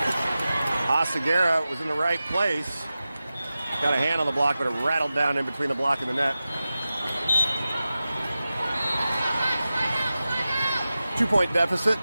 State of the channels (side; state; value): both; inverted; correlation -0.94